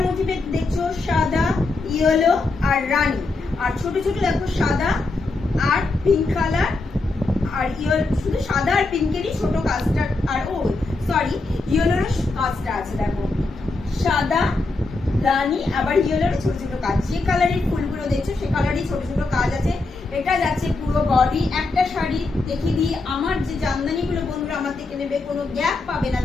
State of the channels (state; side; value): quieter; right; 3.4 dB